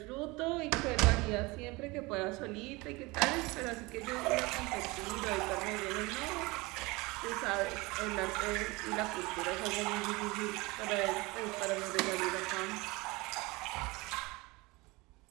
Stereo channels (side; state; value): left; quieter; 23.7 dB